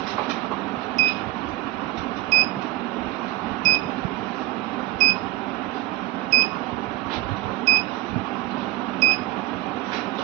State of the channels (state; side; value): quieter; left; 17.0 dB